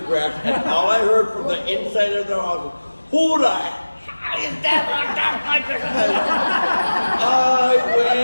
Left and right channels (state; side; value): inverted; both; correlation -1.00